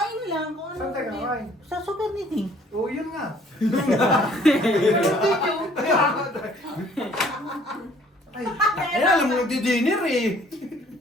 lang kung ano. Saan tayo kakain? Sa super meeting. Oo, yun nga. Ay, alam mo, di-dinner eh.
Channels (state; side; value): normal; both; correlation 0.58